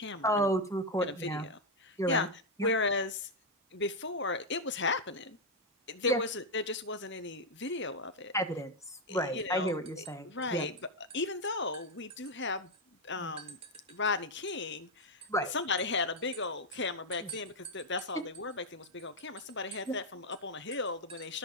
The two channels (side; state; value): both; normal; correlation 0.03